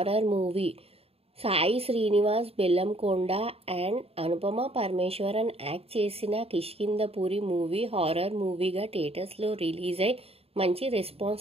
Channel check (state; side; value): late; left; 0.29 ms